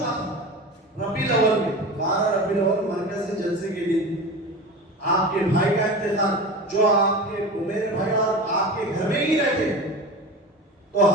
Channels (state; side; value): normal; both; correlation 0.31